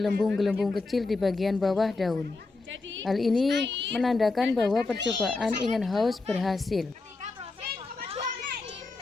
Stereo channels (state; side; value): quieter; right; 3.6 dB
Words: kecil di bagian bawah daun. Hal ini menandakan bahwa percobaan Ingenhousz berhasil.